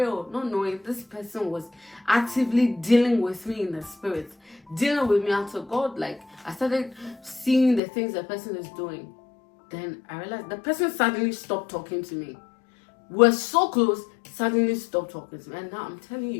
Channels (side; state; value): right; drops out; at 7.8 s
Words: knowing this person was actively dealing with me in the spirit, dealing with me until God, like I started seeing the things the person is doing. Then I realized the person suddenly stopped talking to me. We're so close, suddenly stop talking to me. And now I'm telling